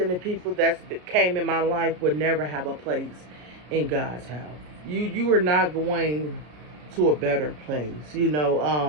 of people that came in my life would never have a place in God's house. You are not going to a better place. You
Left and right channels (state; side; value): late; left; 33 ms